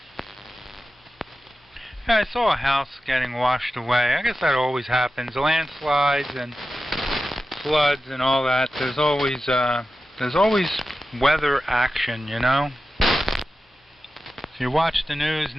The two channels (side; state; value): both; normal; correlation 0.93